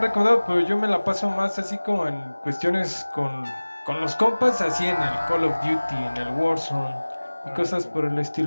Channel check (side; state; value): both; inverted; correlation -1.00